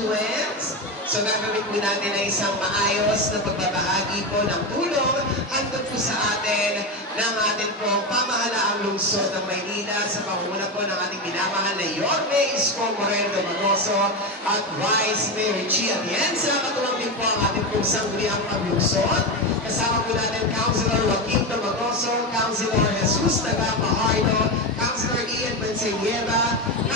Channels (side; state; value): both; normal; correlation 0.16